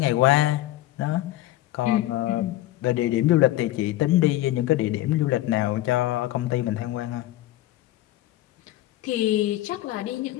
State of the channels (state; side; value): quieter; right; 15.3 dB